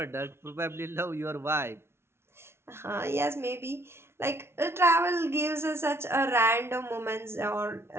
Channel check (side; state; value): left; late; 0.12 ms